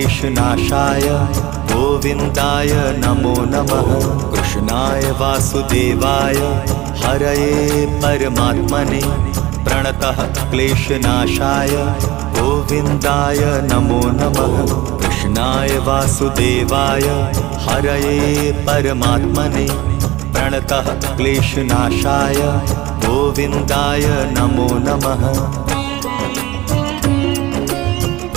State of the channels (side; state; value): left; quieter; 18.8 dB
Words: गोविन्दाय नमो नमः। कृष्णाय वासुदेवाय हरये परमात्मने प्रणतः क्लेशनाशाय गोविन्दाय नमो नमः। कृष्णाय वासुदेवाय हरये परमात्मने प्रणतः क्लेशनाशाय गोविन्दाय नमो नमः।